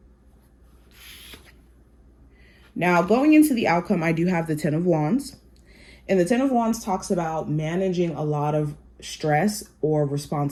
Now, going into the outcome, I do have the Ten of Wands. And the Ten of Wands talks about managing a lot of stress or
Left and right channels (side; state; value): both; identical; correlation 1.00